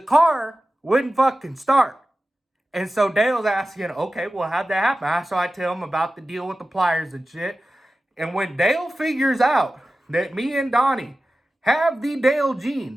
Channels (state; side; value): normal; both; correlation 0.95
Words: wouldn't fucking start." And so Dale's asking, "Okay, well, how'd that happen?" So I tell him about the deal with the pliers and shit. And when Dale figures out that me and Donnie have the Dale